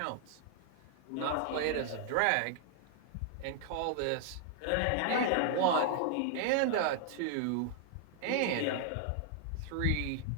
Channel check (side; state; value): both; different; correlation -0.01